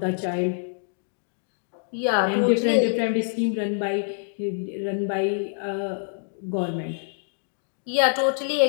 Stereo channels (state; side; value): silent; right; digital silence